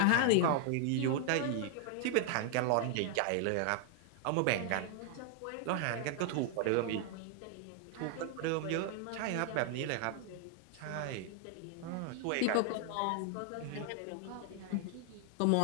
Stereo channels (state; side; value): different; both; correlation 0.00